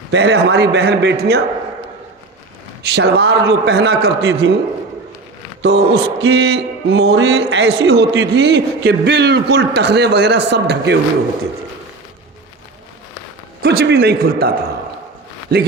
پہلے ہماری بہن بیٹیاں شلوار جو پہنا کرتی تھیں تو اس کی موہری ایسی ہوتی تھی کہ بالکل ٹخنے وغیرہ سب ڈھکے ہوئے ہوتے تھے، کچھ بھی نہیں کھلتا تھا.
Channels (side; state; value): left; quieter; 3.5 dB